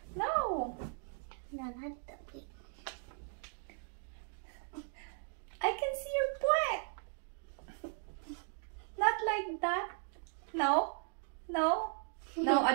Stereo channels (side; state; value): left; silent; 53 dB below the other